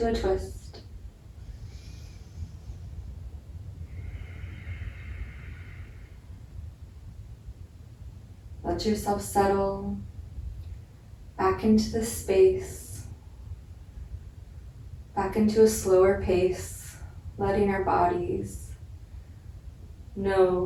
a twist. Let yourself settle back into the space, back into a slower pace, letting our bodies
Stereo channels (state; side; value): identical; both; correlation 1.00